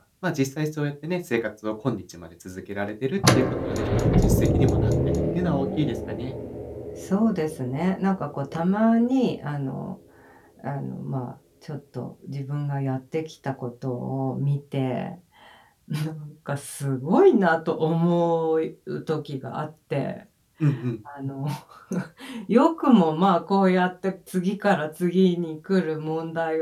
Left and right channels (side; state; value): both; identical; correlation 1.00